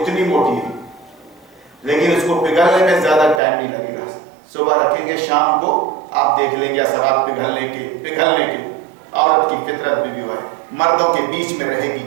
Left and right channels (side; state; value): left; drops out; at 3.4 s